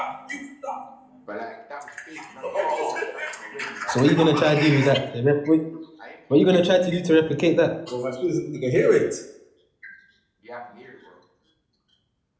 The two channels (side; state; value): both; identical; correlation 1.00